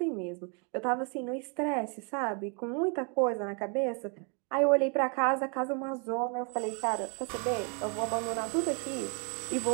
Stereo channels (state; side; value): quieter; left; 36.7 dB